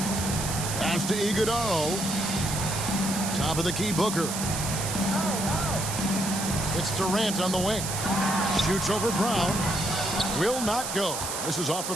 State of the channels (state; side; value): noise; right; hiss, 4 dB below the sound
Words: Pass to Iguodaro. Top of the key Booker. It's Durant on the wing. Shoots over Brown. Will not go. This is off the